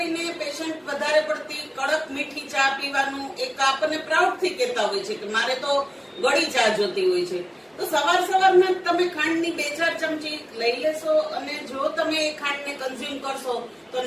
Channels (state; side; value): identical; both; correlation 1.00